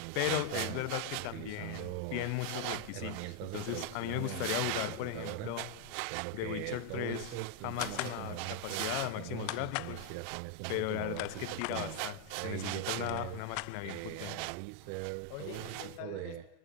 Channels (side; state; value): both; different; correlation 0.01